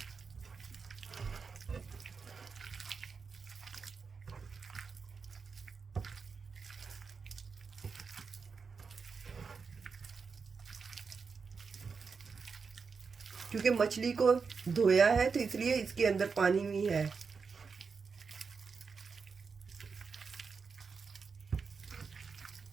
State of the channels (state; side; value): quieter; left; 5.3 dB